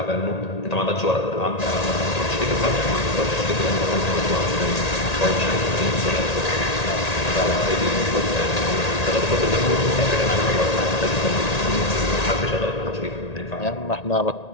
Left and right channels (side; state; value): right; late; 1.8 ms